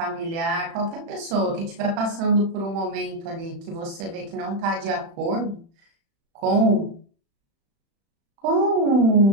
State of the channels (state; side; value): late; left; 36 ms